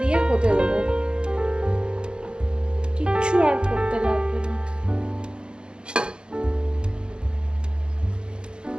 দিয়ে হতে দেবো, কিচ্ছু আর করতে লাগবে না।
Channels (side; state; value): left; late; 0.050 ms